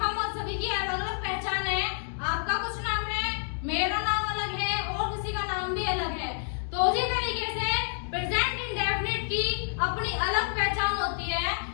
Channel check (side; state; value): right; silent; digital silence